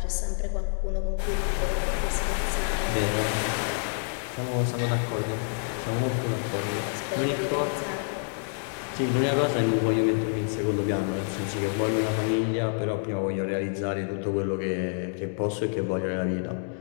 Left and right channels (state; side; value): silent; right; 60 dB below the other